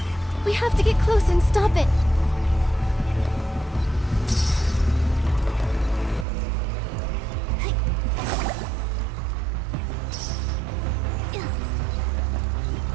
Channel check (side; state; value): left; drops out; at 6.2 s